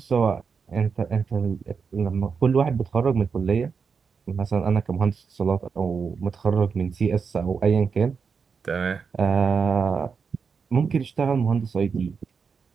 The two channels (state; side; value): quieter; left; 5.7 dB